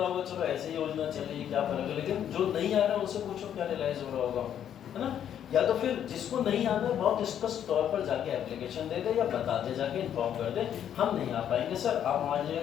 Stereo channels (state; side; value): quieter; right; 9.7 dB